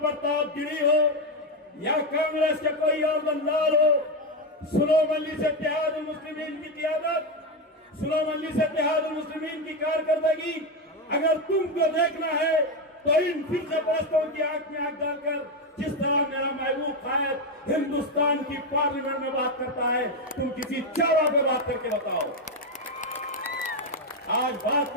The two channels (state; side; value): normal; both; correlation 0.09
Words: गिरी हो या कांग्रेस के कोई और दलाल हो, सुनो मजलिस इत्तेहादुल मुस्लिमीन की क़ियादत, सुनो मजलिस इत्तेहादुल मुस्लिमीन की कारकर्दगी, अगर तुमको देखना है तो इन फिरके परस्तों की आंख में आंख डालकर, जिस तरह मेरा महबूब कायद हिंदुस्तान की पार्लियामेंट में बात करता है, तुम किसी चारा पे बात करके बताओ। आज बात